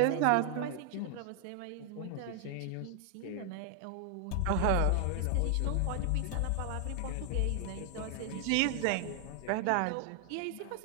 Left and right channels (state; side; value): different; both; correlation 0.00